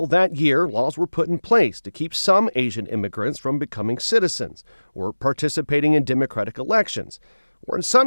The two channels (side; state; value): both; inverted; correlation -1.00